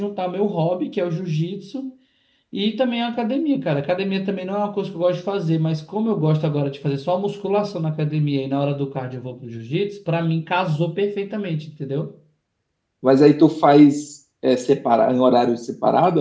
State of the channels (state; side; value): identical; both; correlation 1.00